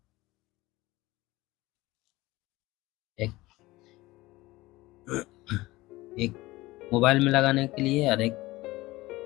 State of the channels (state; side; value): quieter; right; 19.4 dB